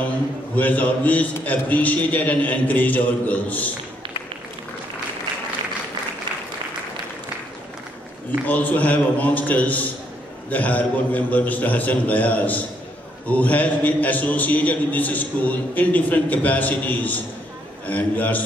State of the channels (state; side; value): normal; both; correlation 0.72